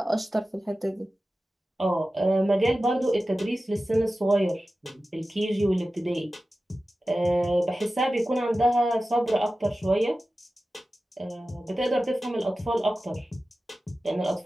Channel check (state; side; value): normal; both; correlation 0.95